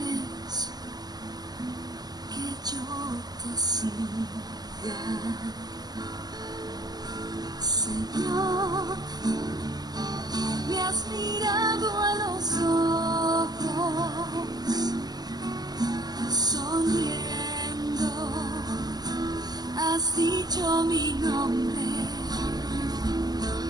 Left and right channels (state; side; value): late; left; 0.20 ms